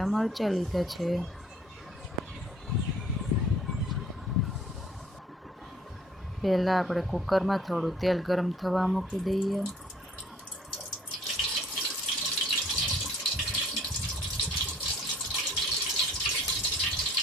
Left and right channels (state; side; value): normal; both; correlation 0.57